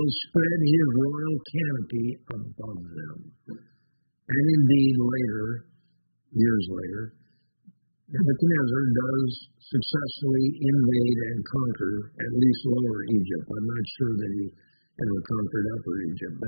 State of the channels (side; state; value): both; inverted; correlation -1.00